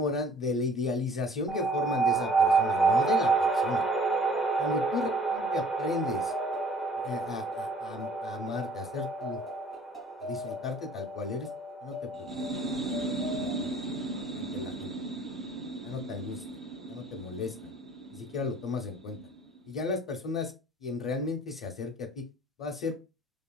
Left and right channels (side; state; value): both; normal; correlation 0.54